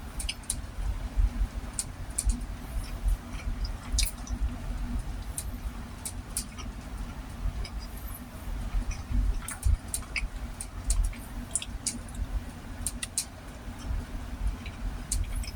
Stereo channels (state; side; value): identical; both; correlation 1.00